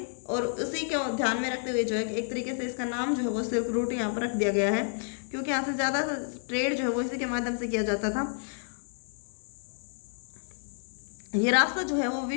और उसी को ध्यान में रखते हुए जो है एक तरीके से इसका नाम जो है वो सिल्क रूट यहाँ पर रख दिया गया है, क्योंकि यहाँ से ज़्यादा ट्रेड जो है वो इसी के माध्यम से किया जाता था। ये रास्ता जो है वो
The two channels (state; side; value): silent; right; 58 dB below the other